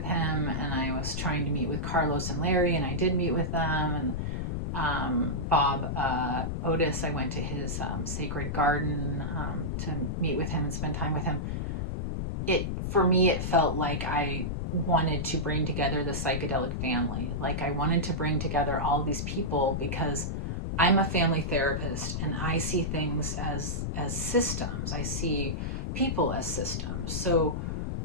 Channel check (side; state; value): left; noise; rumble, 2 dB below the sound